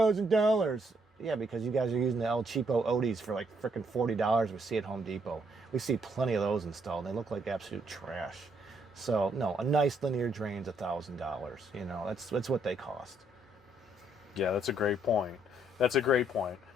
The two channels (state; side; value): normal; both; correlation 0.71